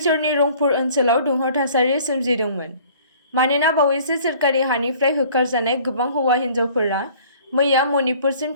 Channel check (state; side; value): inverted; both; correlation -0.52